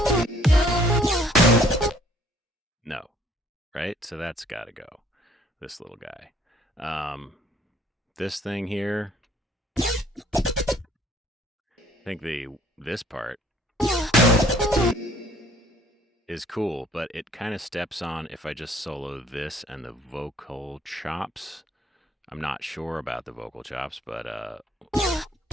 No. Right? So that's got to go. This little guy. This thing here... I think this part is cool, but it kind of steps on if I just solo this and the vocal chops. I'm not sure about the vocal chops, but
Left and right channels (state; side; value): normal; both; correlation 0.59